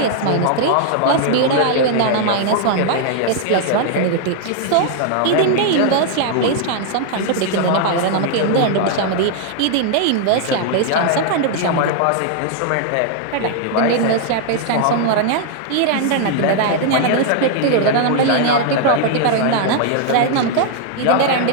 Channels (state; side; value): different; both; correlation 0.00